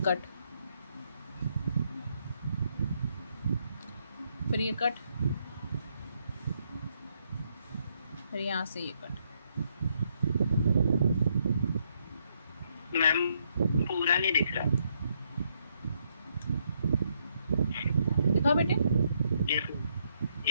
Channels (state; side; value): inverted; both; correlation -0.75